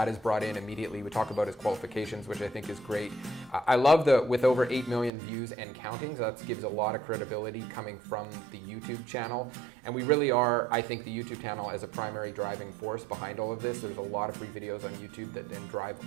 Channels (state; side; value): drops out; left; at 5.1 s